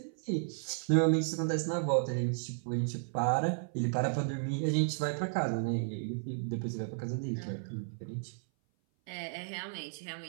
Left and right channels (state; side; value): silent; left; 55 dB below the other